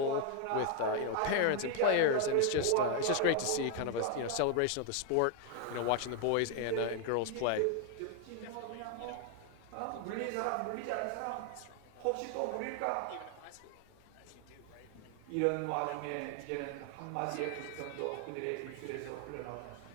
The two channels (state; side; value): different; both; correlation 0.00